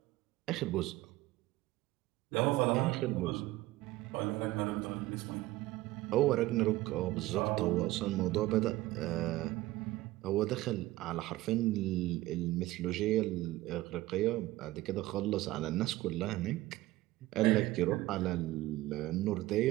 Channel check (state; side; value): quieter; left; 17.7 dB